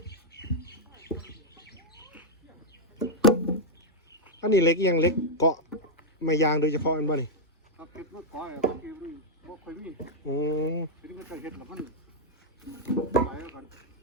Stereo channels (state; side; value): normal; both; correlation -0.03